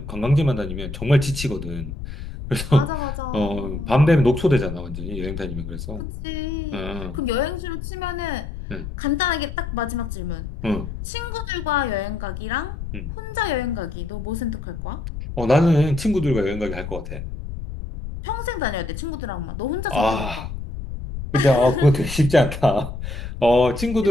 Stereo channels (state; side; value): noise; left; rumble, 8 dB below the sound